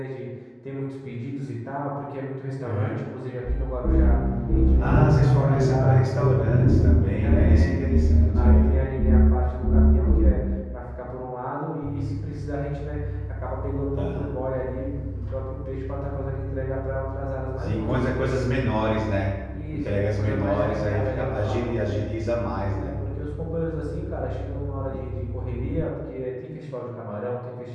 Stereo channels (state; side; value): identical; both; correlation 1.00